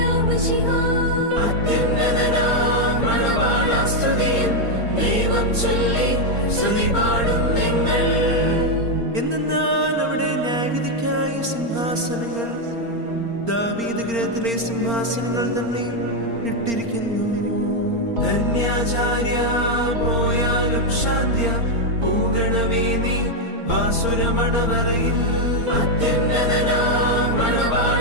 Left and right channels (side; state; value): left; late; 4.3 ms